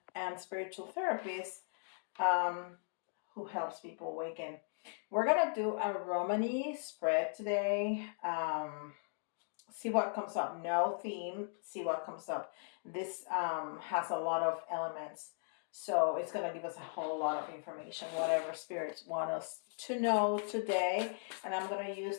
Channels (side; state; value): right; silent; digital silence